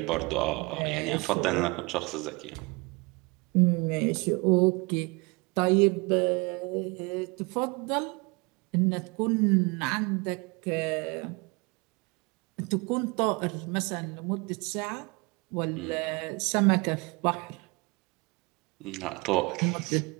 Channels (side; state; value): left; quieter; 27.1 dB